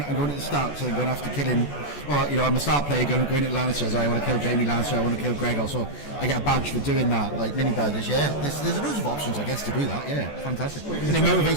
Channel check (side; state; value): right; late; 14 ms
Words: at the start, so I'm going after killing. Or I'm a start player going at Lannister. So I want to kill Jamie Lannister, I want to kill Gregor. So I get a badge for doing that, like mini badges. Yeah, there's loads of options, I guess, to do that. Yeah, fantastic, and it